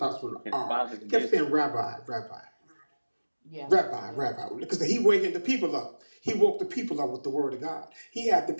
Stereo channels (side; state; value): both; inverted; correlation -1.00